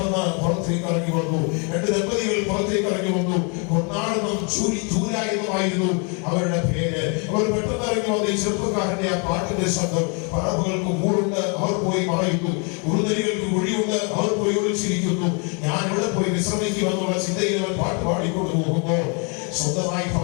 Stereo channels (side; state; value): right; quieter; 35.5 dB